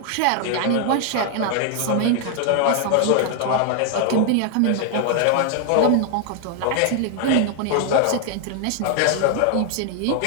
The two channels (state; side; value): different; both; correlation 0.00